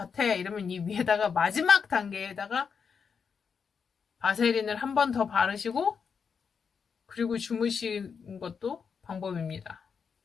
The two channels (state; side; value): quieter; right; 6.2 dB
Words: 이러면 이 위에다가 마지막 단계에다가 바세린을 한 번 더 바르시고 그리고 주무시는 것도 방법입니다.